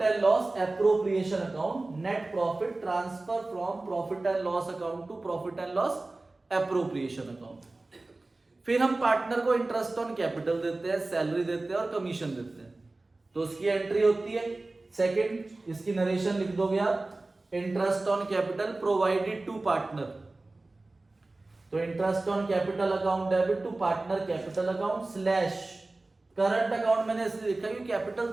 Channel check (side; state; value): left; quieter; 3.1 dB